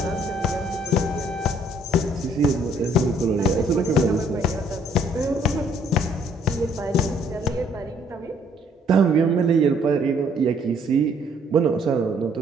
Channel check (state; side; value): normal; both; correlation 0.63